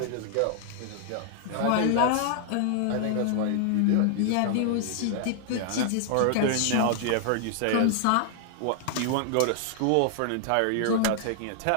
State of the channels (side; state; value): both; different; correlation 0.00